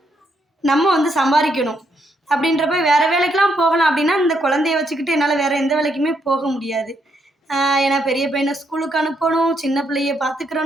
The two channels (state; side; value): normal; both; correlation 0.76